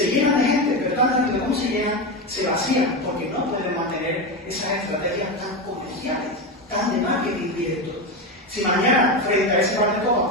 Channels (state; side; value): normal; both; correlation 0.16